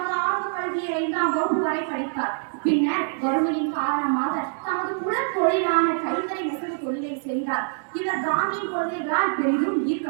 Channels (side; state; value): left; silent; 62 dB below the other